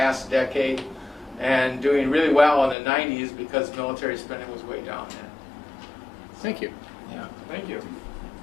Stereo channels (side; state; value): right; drops out; at 2.8 s